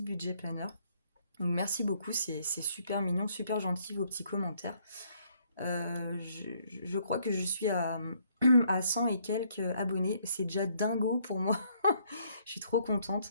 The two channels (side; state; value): both; inverted; correlation -0.68